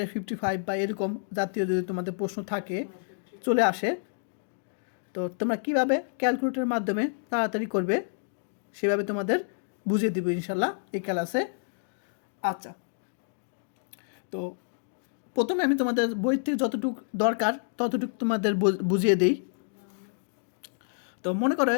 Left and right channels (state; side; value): silent; right; digital silence